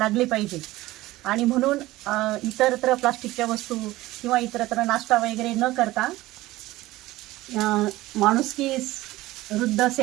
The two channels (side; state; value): left; quieter; 17.7 dB